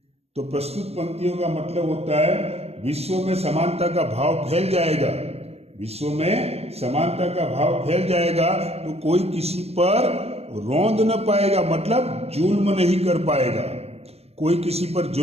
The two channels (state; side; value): late; left; 0.30 ms